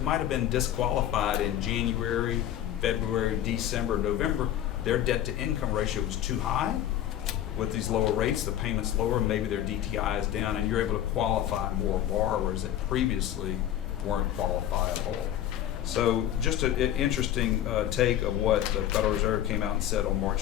might have been disqualified in January, February, December, November, their debt to income ratio was too high. With these lower rates, the payment's lower, maybe their DTI is down, and you're able to qualify more borrowers that previously weren't qualifiable. So just an interesting take of what the Federal Reserve came out and said on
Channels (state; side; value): quieter; right; 11.7 dB